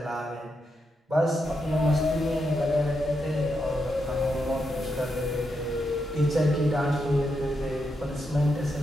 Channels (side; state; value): both; normal; correlation 0.83